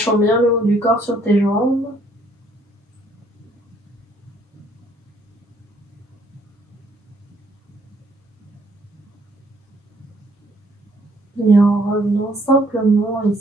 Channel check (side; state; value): both; normal; correlation 0.65